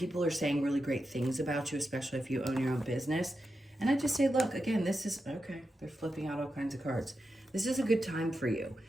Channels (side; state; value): both; normal; correlation 0.89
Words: are saying really great things about you, especially if you own your own business. And I just say, look, again, this is, okay, they're flipping out all kinds of cards. This is a good time for you